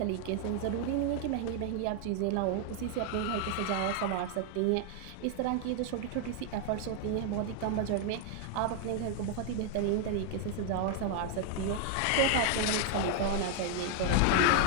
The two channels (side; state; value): both; different; correlation 0.00